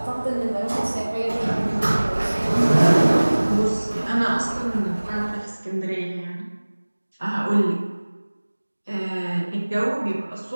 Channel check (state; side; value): inverted; both; correlation -1.00